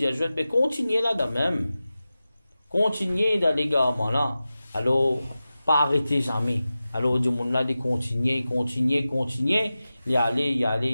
ajoute, mais continuez là-dedans même. Continuez dans l'égarement là. Alors, pas arrêtez jamais. Alors, du monde là, de continuer, y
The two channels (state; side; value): inverted; both; correlation -0.95